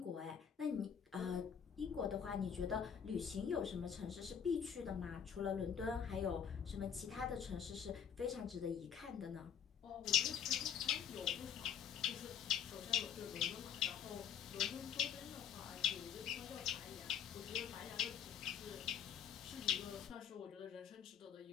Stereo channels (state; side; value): quieter; right; 8.2 dB